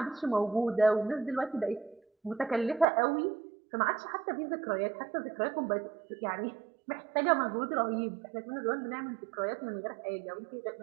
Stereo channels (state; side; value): drops out; left; at 2.9 s